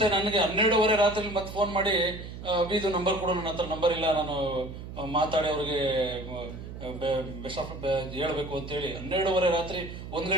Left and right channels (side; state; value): right; noise; hum, 11 dB below the sound